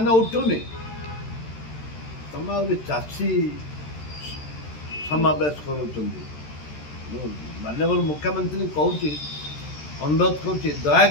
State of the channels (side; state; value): right; late; 13 ms